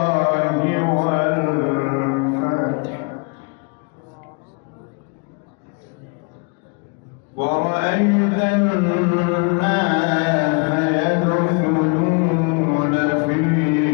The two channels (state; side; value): quieter; right; 34.3 dB